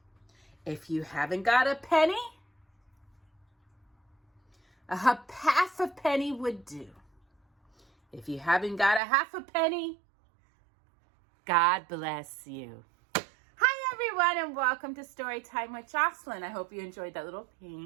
If you haven't got a penny, a half a penny would do. If you haven't got a half a penny, God bless you. Hi everyone, and welcome to Storytime with Jocelyn. I hope you enjoyed that little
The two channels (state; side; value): drops out; left; at 9.0 s